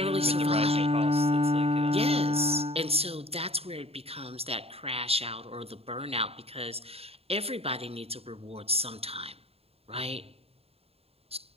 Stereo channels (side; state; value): left; late; 0.29 ms